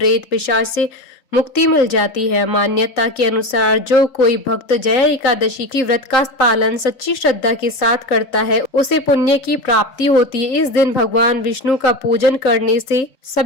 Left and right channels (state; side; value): late; right; 3.8 ms